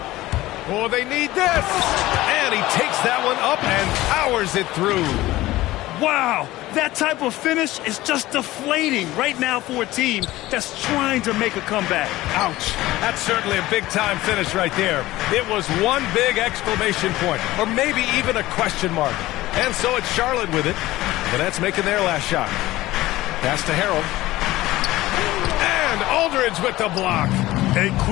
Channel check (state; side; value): quieter; right; 17.3 dB